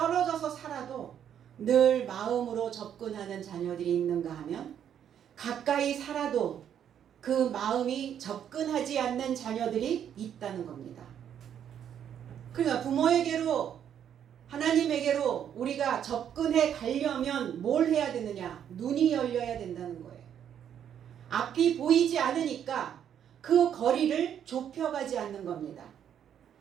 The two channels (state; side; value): quieter; left; 9.2 dB